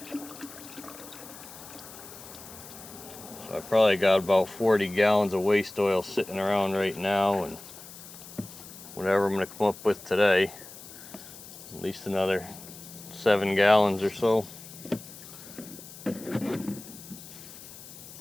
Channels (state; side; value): noise; left; hiss, 16 dB below the sound